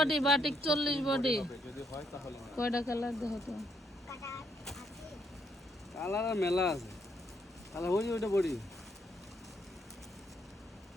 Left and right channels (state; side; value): normal; both; correlation 0.74